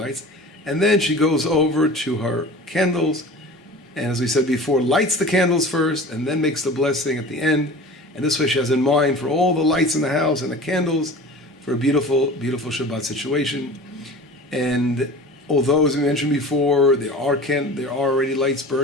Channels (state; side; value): normal; both; correlation 0.38